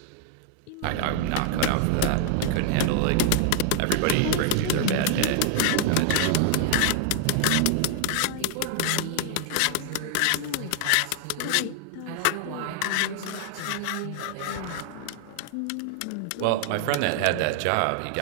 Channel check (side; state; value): both; different; correlation 0.00